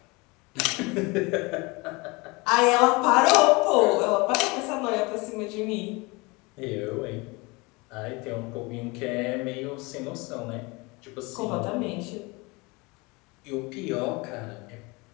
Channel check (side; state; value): right; quieter; 26.0 dB